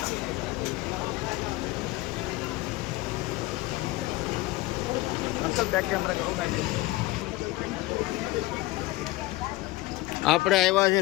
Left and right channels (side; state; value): right; quieter; 19.1 dB